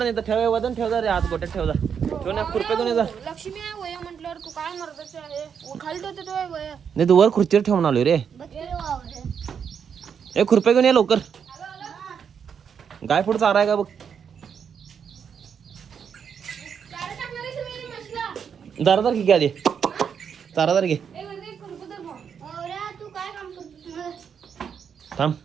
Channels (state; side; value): quieter; left; 7.2 dB